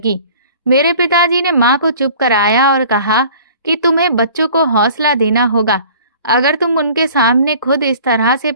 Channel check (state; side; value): inverted; both; correlation -0.48